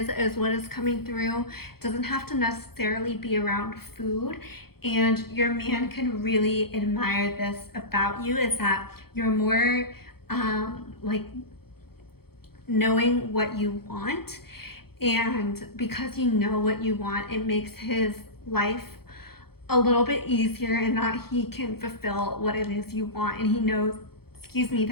is what is coming through. It doesn't have to necessarily be around food. And your man can really admire this about you, is that you're more like knowing what you want. And because you know what you want, it makes his life a little bit easier in that he can fulfill what it is you want. And he knows, excuse me,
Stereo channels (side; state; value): right; late; 0.95 ms